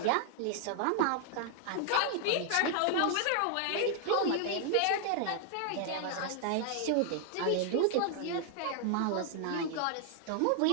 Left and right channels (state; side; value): different; both; correlation -0.01